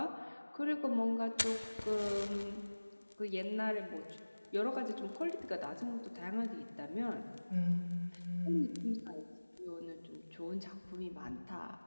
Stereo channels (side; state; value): both; inverted; correlation -1.00